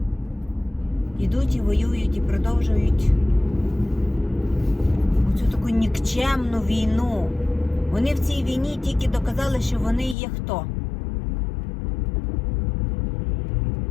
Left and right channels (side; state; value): right; drops out; at 10.2 s